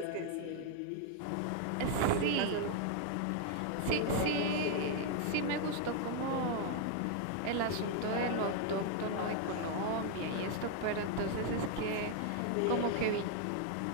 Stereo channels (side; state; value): both; different; correlation 0.00